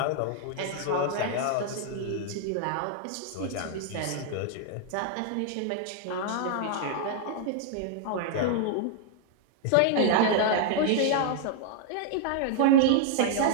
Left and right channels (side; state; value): both; different; correlation -0.01